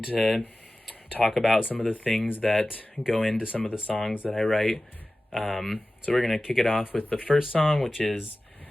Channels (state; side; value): normal; both; correlation 0.96